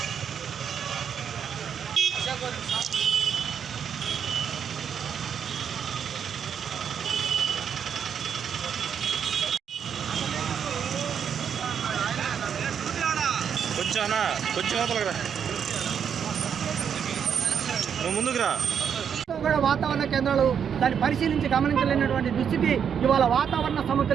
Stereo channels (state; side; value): quieter; left; 7.8 dB